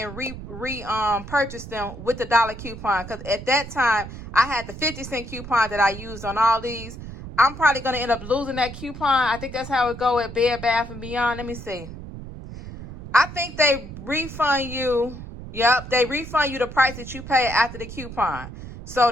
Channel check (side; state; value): right; noise; rumble, 12 dB below the sound